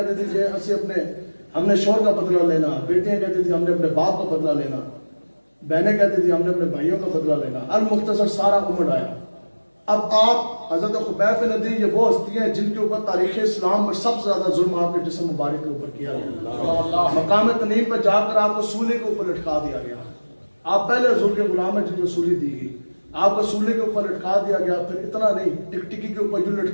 تھی کہ ہم نے شوہر کا بدلہ لینا, بیٹیاں کہتی تھی ہم نے اپنے باپ کا بدلہ لینا. بہنیں کہتی تھی ہم نے اپنے بھائیوں کا بدلہ لینا. المختصر سارا عمر آیا. اب آپ حضرت خبیب بن عدی یہ وہ ہستی ہیں جن کے اوپر تاریخ اسلام میں سب سے زیادہ ظلم آپ کے جسم مبارک کے اوپر کیا گیا. مقام تنعیم پہ جا کر آپ کو سولے کے اوپر لٹکا دیا گیا. آپ پہلے حضور کے غلام ہیں جن کو سولی دی گئی. آپ کو سولے کے اوپر لٹکا دیا گیا. پھر اتنا نہیں, ٹکٹکی کے اوپر یوں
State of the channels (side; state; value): both; inverted; correlation -1.00